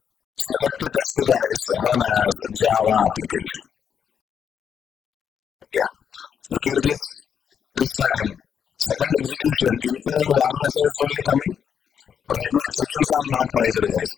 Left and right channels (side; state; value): right; quieter; 7.8 dB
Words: Select test, guys. Run as Java application. Yeah. Look at this. This time. Second execution, info and warn messages only coming. Right now, exceptions are not raised,